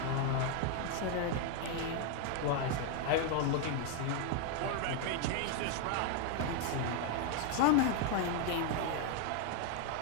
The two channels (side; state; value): both; different; correlation 0.01